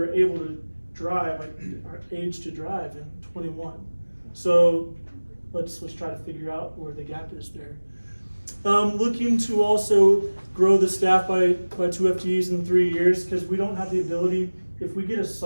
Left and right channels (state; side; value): inverted; both; correlation -1.00